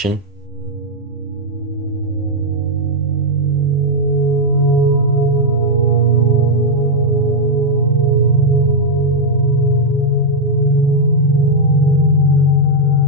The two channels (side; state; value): both; normal; correlation -0.02